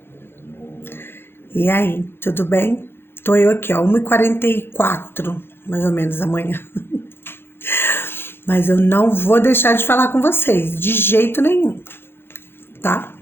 E aí, tudo bem? Tô eu aqui, ó, 1h44, mais ou menos, da manhã. Mas eu não vou deixar de falar com vocês, de jeito nenhum, tá?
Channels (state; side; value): late; right; 0.11 ms